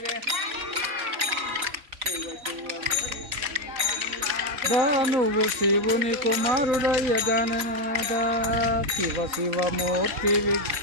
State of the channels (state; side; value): late; left; 3.9 ms